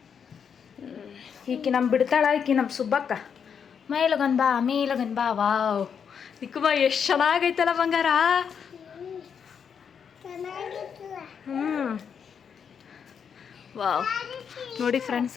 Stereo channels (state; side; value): quieter; right; 7.1 dB